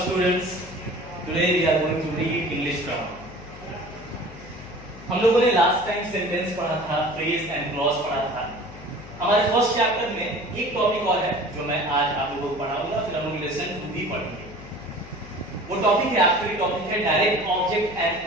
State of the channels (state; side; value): noise; left; hum, 16 dB below the sound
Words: today we are going to read English grammar. हम लोगों ने लास्ट टाइम सेंटेंस पढ़ा था, फ्रेज एंड क्लॉज पढ़ा था. हमारे फर्स्ट चैप्टर में एक टॉपिक और है जो मैं आज आप लोगों को पढ़ाऊंगा, फिर हम लोग लेसन 2 भी पढ़ेंगे. वो टॉपिक है, आखिरी टॉपिक है direct object